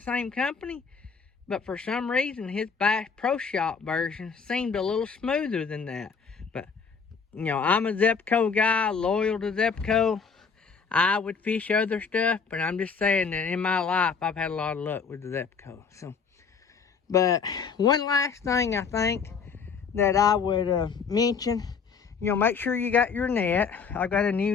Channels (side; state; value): right; quieter; 5.8 dB